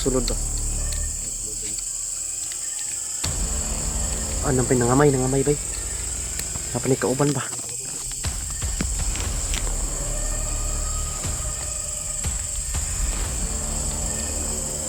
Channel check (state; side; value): identical; both; correlation 1.00